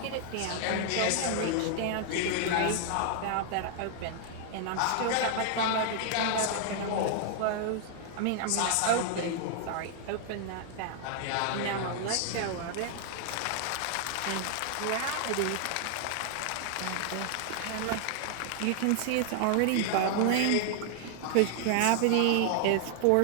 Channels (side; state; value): both; different; correlation 0.00